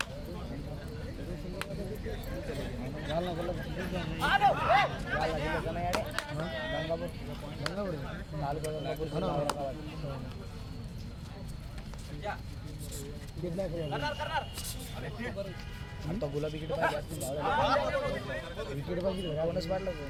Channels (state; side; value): identical; both; correlation 1.00